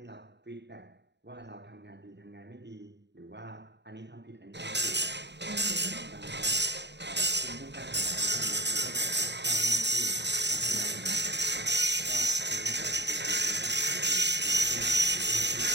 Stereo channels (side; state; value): left; late; 0.50 ms